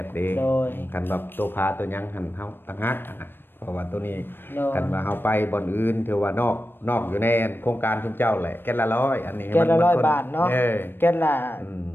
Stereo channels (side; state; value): right; late; 0.098 ms